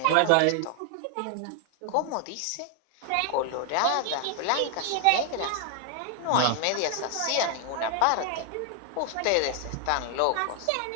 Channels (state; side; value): different; both; correlation 0.00